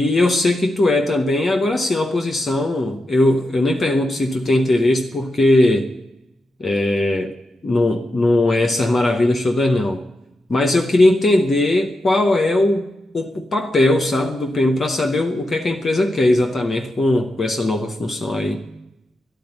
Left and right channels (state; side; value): normal; both; correlation 0.87